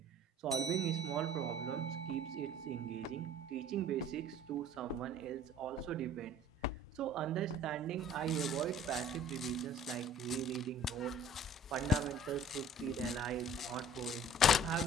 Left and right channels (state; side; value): normal; both; correlation 0.49